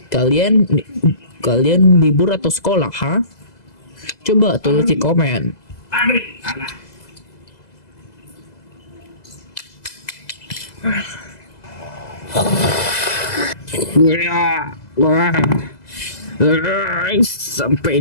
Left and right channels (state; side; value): late; right; 2.0 ms